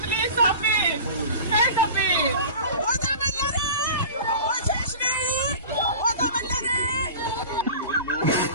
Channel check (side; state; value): both; inverted; correlation -0.37